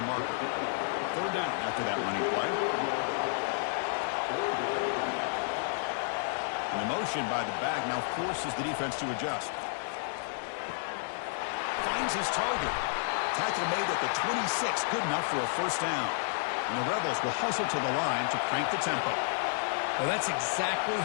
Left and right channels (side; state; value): right; silent; digital silence